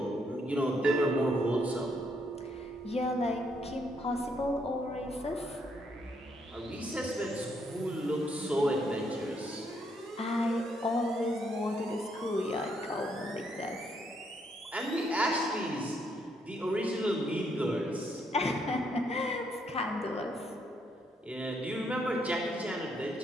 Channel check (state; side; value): normal; both; correlation 0.73